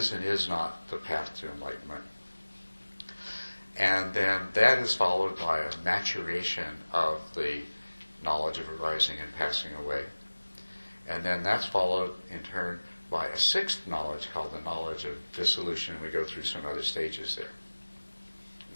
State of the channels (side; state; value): both; inverted; correlation -1.00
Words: and is not the path to enlightenment. And then that is followed by a maturation of the knowledge of arising and passing away. And then that's followed in turn by a 6th knowledge called the knowledge of dissolution, and we go through some other stages there.